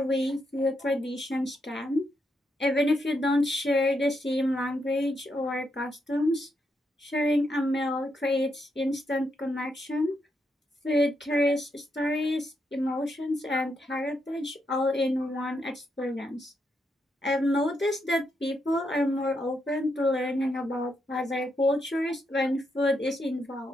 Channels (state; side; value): normal; both; correlation 0.81